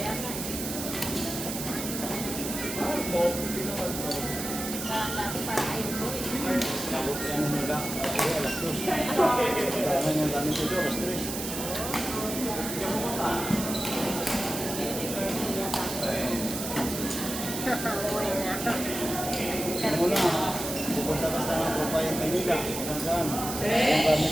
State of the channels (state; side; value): noise; right; hiss, 6 dB below the sound